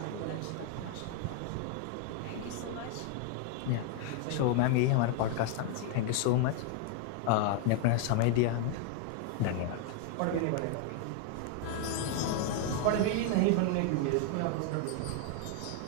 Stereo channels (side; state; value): both; different; correlation 0.00